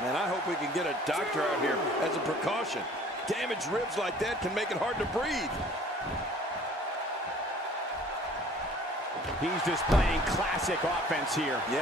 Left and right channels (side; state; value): both; normal; correlation 0.52